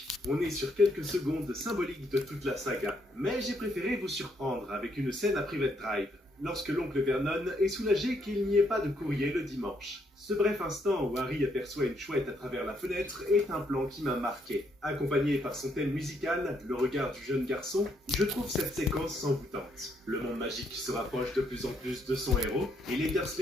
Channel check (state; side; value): normal; both; correlation 0.73